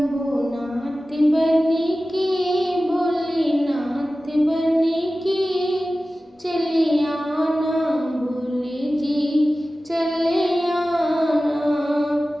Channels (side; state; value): both; normal; correlation 0.96